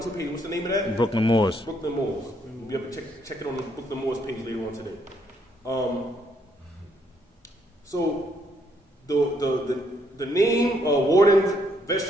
page. What's the name of that? Brooklyn Moors. Brooklyn Moors. You'll be able to check it on the Brooklyn Moors page later on today. So the name, warden,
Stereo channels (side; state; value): both; normal; correlation 0.71